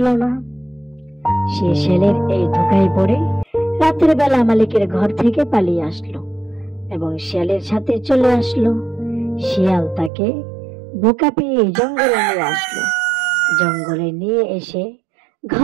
না। সে শেয়ালের এই ধোকায় পড়ে রাতের বেলা মালিকের ঘর থেকে পালিয়ে আসলো এবং শিয়ালের সাথে চলে আসলো। শিয়াল তাকে বোকা পেয়ে জঙ্গলে নিয়ে আসলো। জঙ্গলে নিয়ে এসে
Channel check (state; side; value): drops out; left; at 10.1 s